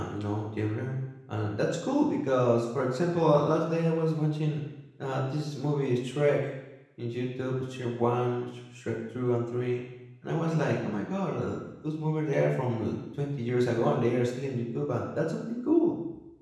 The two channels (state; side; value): identical; both; correlation 1.00